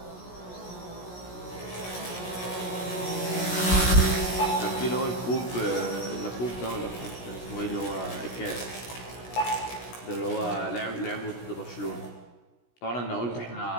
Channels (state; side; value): late; right; 16 ms